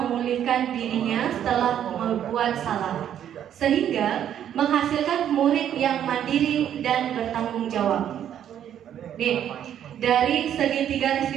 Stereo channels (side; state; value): left; quieter; 10.0 dB